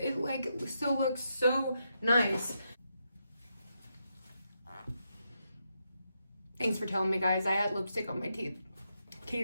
like still looks so nice. Thanks for telling me, guys. I had lipstick on my teeth. Can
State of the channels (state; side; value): inverted; both; correlation -0.83